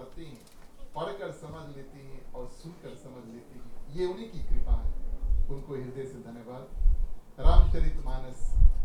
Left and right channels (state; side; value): identical; both; correlation 1.00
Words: हैं, पढ़कर समझ लेते हैं और सुनकर समझ लेते हैं। ये उन्हीं की कृपा है, उनको हृदय से धन्यवाद। रामचरितमानस